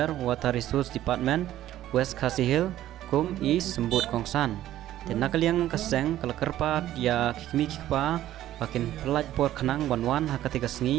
water resource department West Khasi Hill kum is sembut kong san te nakaliang kaseng kala kerpat ya kikmi kikpa bakin pelaj por khanang banwan hakati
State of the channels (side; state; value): left; quieter; 13.2 dB